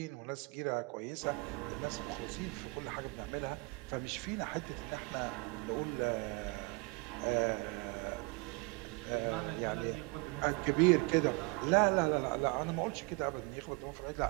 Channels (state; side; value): quieter; left; 26.5 dB